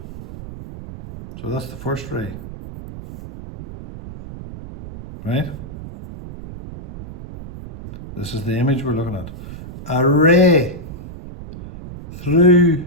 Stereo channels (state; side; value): noise; right; rumble, 12 dB below the sound